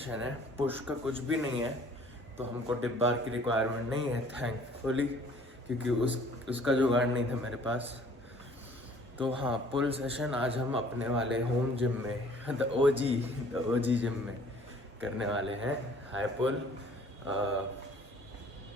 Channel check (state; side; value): normal; both; correlation 0.54